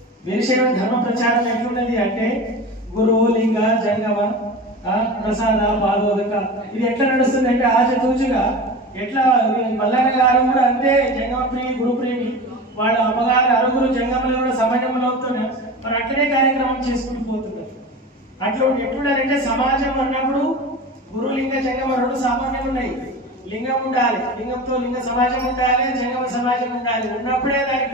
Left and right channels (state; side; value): normal; both; correlation 0.31